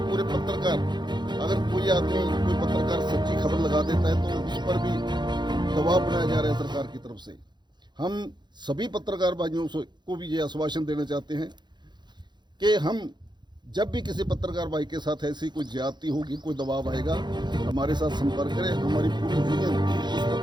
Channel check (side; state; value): left; late; 0.21 ms